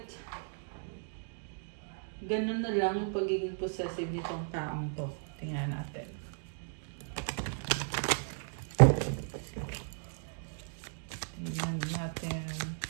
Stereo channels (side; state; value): left; silent; digital silence